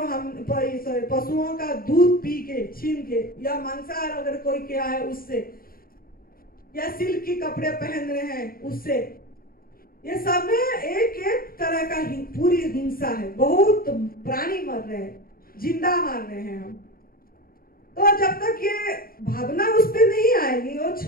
हम पशुओं का दूध पी के, छीन के, या मांसाहार अगर कोई किया है उससे, या सिल्क के कपड़े पहन रहे हैं उससे, ये सब में एक तरह का पूरी हिंसा है। बहुत प्राणी मर रहे हैं, जिंदा मार रहे हैं हम। तो जब तक ये भावना उस पर नहीं आएगी, वो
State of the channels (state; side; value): late; right; 0.43 ms